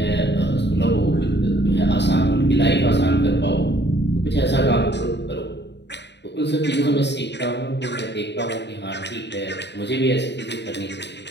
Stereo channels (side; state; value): right; late; 0.50 ms